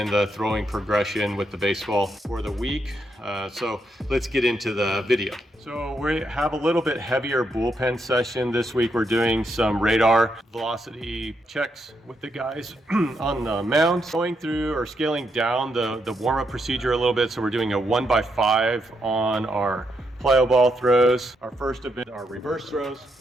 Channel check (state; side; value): normal; both; correlation 0.79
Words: the throwing progression with the baseball for the week. So let's get into the video. So we have a little bit heavier bullpen session this week. We're doing some radar velocity checks with the guys on the mound. Going through or scaling down the warm-up procedure a little bit. So we're doing a 1x5 on our plyo ball throws. Our first event, our reverse throws.